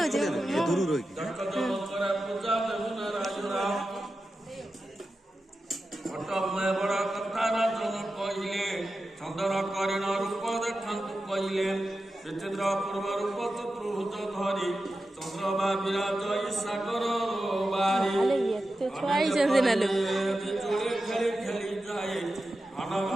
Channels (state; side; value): normal; both; correlation 0.92